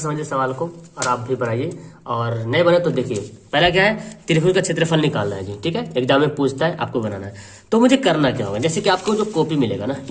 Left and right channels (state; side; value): identical; both; correlation 1.00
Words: समझिए सवाल को और आप भी बनाइए। और नहीं बने तो देखिए, पहला क्या है, त्रिभुज का क्षेत्रफल निकालना है जी, ठीक है। एग्जाम में पूछता है, आपको बनाना है। तो मुझे करना क्या होगा, जैसे कि आपको जो कॉपी मिलेगा ना,